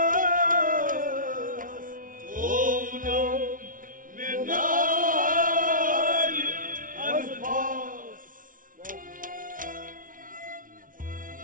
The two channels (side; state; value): left; late; 0.39 ms